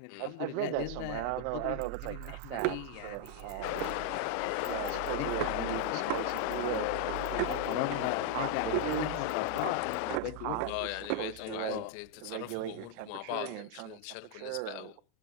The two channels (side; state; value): both; different; correlation 0.00